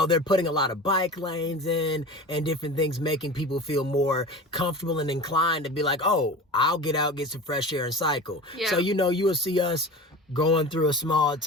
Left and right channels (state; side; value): normal; both; correlation 0.34